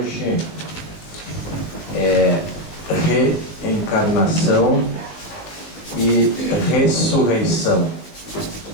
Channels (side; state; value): right; late; 20 ms